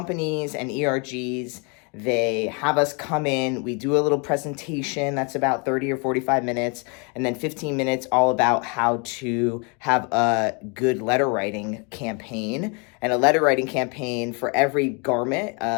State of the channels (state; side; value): quieter; right; 33.5 dB